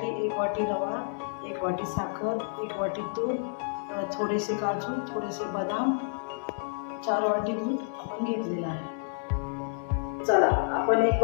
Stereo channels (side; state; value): right; silent; digital silence